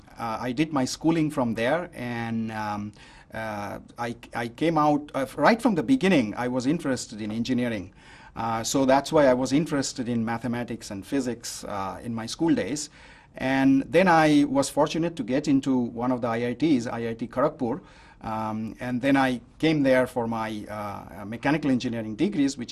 did my schooling from there, and I came out right from the beginning. I was interested in engineering. So that's why I was interested in mathematics and physics in my school days. And then I was fortunate to get into one of the IITs, IIT Kharagpur. And then I came there for my mechanical engineering degrees,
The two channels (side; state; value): both; identical; correlation 1.00